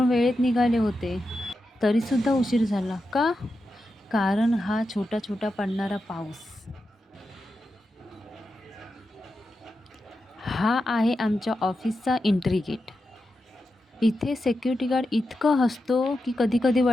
वेळेत निघाले होते, तरीसुद्धा उशीर झाला. का? कारण हा छोटा-छोटा पडणारा पाऊस. हा आहे आमच्या ऑफिसचा एंट्री गेट. इथे सिक्युरिटी गार्ड इतकं हसतो, की कधी-कधी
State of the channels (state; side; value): normal; both; correlation 0.89